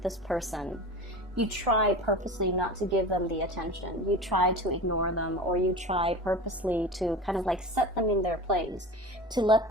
this person, you try purposely not to give them the attention. You try to ignore them, or you try purposely to kind of like set them in their place, to let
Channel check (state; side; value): normal; both; correlation 0.33